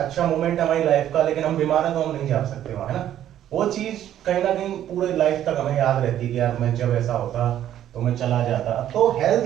मोमेंट है हमारी लाइफ का, लेकिन हम बीमार हैं तो हम नहीं जा सकते वहां, है ना। वो चीज कहीं ना कहीं पूरे लाइफ तक हमें याद रहती है कि यार मैं जब ऐसा होता तो मैं चला जाता। तो हेल्थ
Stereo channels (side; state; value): left; quieter; 11.4 dB